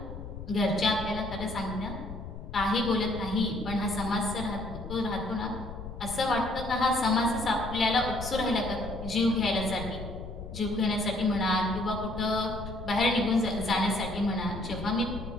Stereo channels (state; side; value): noise; left; rumble, 10 dB below the sound